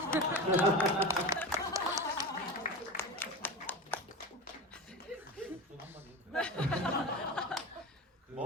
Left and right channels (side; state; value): both; normal; correlation 0.26